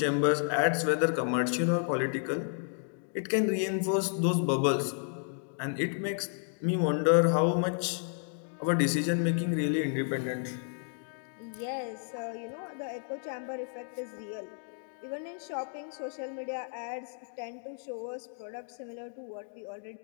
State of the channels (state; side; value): silent; right; 56 dB below the other